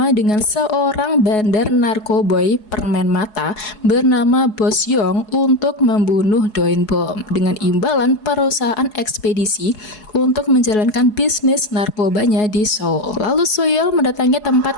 dengan seorang bandar narkoboy permen mata bernama Bos Yong untuk membunuh Do In Bom dengan imbalan perusahaan ekspedisi untuk menjalankan bisnis narkobanya di Seoul. Lalu Suyol mendatangi tempat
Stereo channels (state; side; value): late; right; 4.7 ms